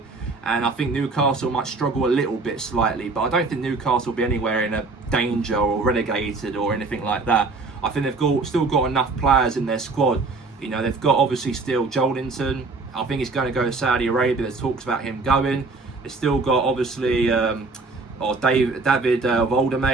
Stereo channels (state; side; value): quieter; left; 3.8 dB